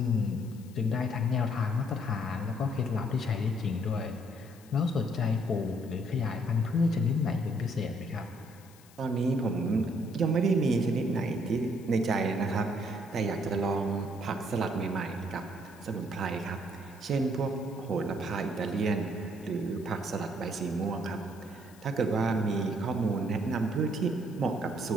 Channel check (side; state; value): left; noise; hiss, 25 dB below the sound